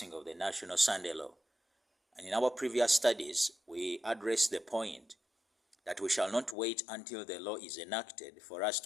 of the National Sunday Law? And in our previous studies, we addressed the point that we shall not wait until the law is enacted for us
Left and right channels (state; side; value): drops out; right; at 6.6 s